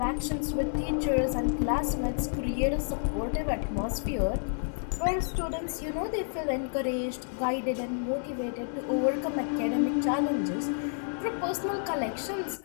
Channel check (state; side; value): silent; right; 58 dB below the other